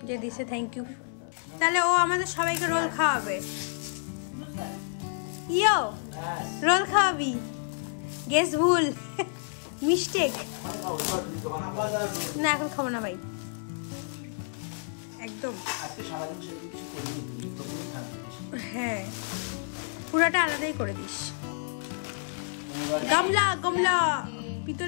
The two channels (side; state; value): right; silent; digital silence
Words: যে দিছে, থ্যাংক ইউ। তাহলে ও আমাদের সবাইকে রোল খাওয়াবে। ইয়ো রোল খাওয়াবি? গেস ভুল, মিস্টেক। না এখন খাবো না ভাই, একদম। আজকে সারাদিন কিছু করিনি। হ্যাঁ পুরাটা আলাদাই করে দিস। গামলা গামলা